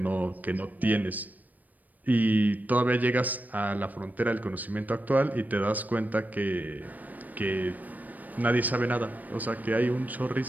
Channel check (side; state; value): left; late; 0.081 ms